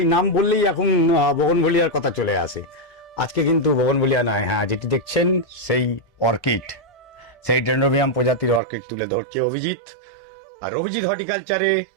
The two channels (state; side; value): drops out; left; at 8.6 s